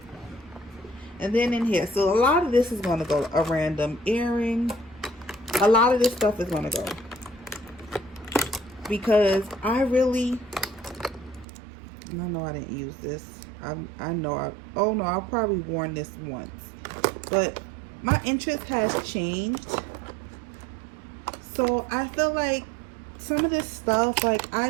And then in here, so a lot of this is going to go. A random earring. A lot of this stuff is going to go. Because I know I didn't use this. I know oh no, I've probably worn this once. But my interest has changed. So I feel like some of this stuff, like I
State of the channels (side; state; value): left; drops out; at 11.5 s